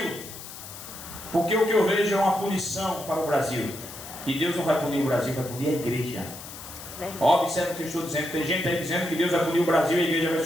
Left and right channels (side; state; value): left; noise; hiss, 13 dB below the sound